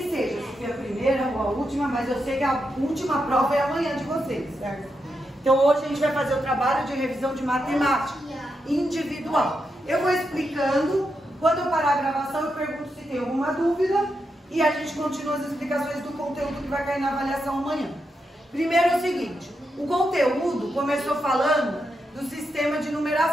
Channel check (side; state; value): both; normal; correlation 0.85